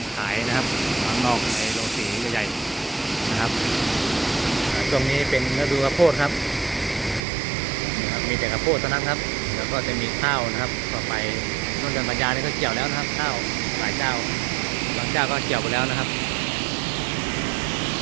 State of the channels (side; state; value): left; drops out; at 7.2 s